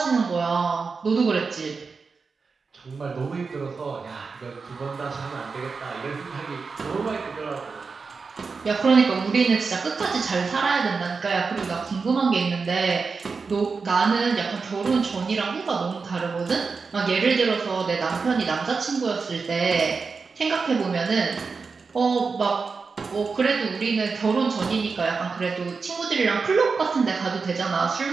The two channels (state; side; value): quieter; left; 4.8 dB